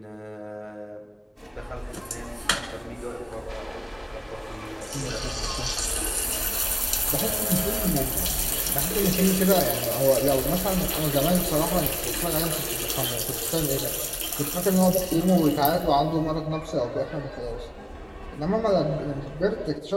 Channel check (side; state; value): both; identical; correlation 1.00